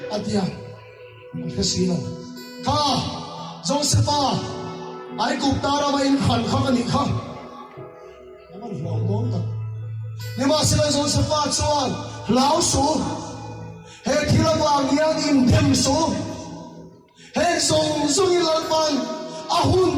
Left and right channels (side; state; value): both; identical; correlation 1.00